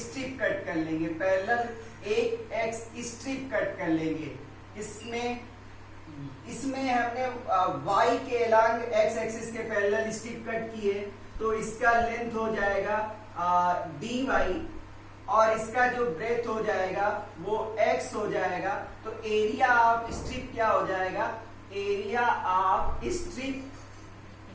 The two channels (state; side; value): identical; both; correlation 1.00